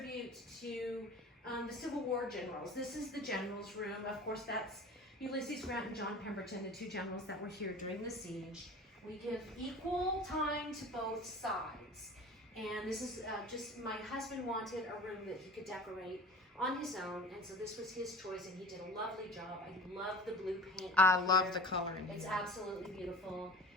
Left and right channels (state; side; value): normal; both; correlation 0.38